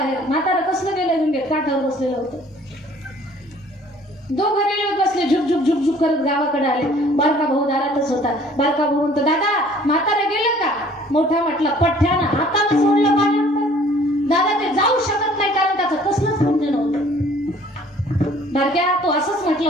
म्हातारं कसलं गेलं गंगेत, काठावर बसलेलं होतं. दोघं रेल्वेत बसले, झुक झुक झुक झुक करत गावाकडे आले. बारका भाऊ दारातच होता. बारका भाऊ म्हणतो दादा म्हातारं गेलं का. मोठा म्हटला पठ्ठ्यानं हाताला सोडलं पाण्यात. दादा ते जाऊ शकत नाही कारण त्याचं कसलंच पुण्य नव्हतं. बारक्या तो असंच म्हटलं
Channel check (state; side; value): normal; both; correlation 0.54